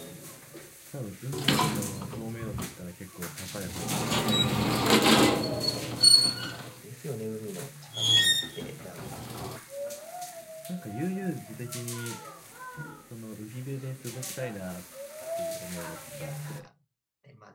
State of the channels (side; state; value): both; identical; correlation 1.00